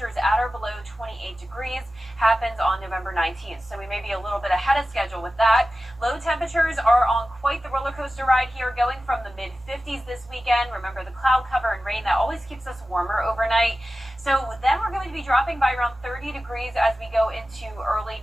at or below 28 degrees, happens on November 19th. So we may be a little bit ahead of schedule with that. Low temperatures are on quite the roller coaster ride here, going from the mid-50s this weekend. Remember the cloud cover and rain, that always keeps us warmer overnight. So then we're going to be dropping by around 30 degrees as we go into early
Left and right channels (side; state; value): both; normal; correlation 0.95